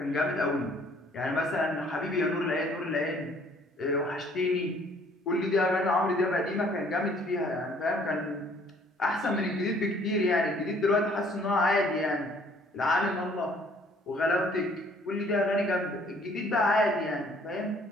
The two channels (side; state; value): both; normal; correlation 0.59